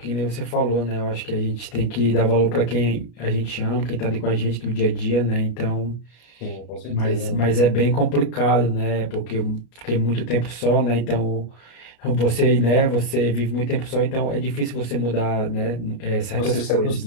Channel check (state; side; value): late; right; 33 ms